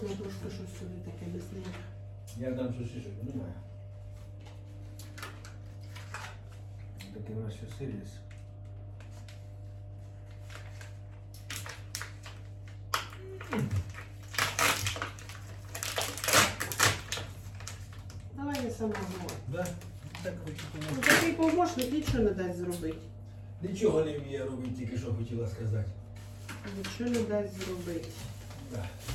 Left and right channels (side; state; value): both; identical; correlation 1.00